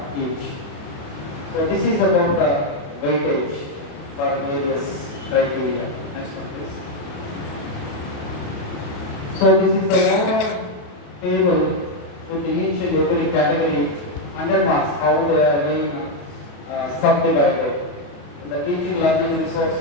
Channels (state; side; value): late; right; 28 ms